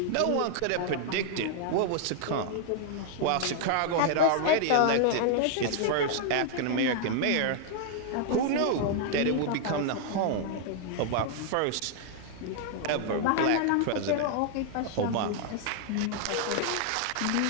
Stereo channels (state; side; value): different; both; correlation 0.00